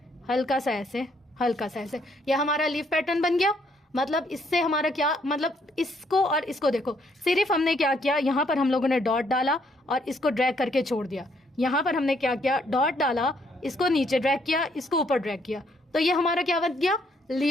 हल्का सा ऐसे, हल्का सा ऐसे। यह हमारा लीफ पैटर्न बन गया। मतलब इससे हमारा क्या मतलब, इसको और इसको देखो, सिर्फ हमने क्या किया, यहाँ पर हम लोगों ने डॉट डाला और इसको ड्रैग करके छोड़ दिया। यहाँ पर हमने क्या किया, डॉट डाला, इसको नीचे ड्रैग किया, इसको ऊपर ड्रैग किया। तो ये हमारा क्या बन गया,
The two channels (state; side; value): normal; both; correlation 0.70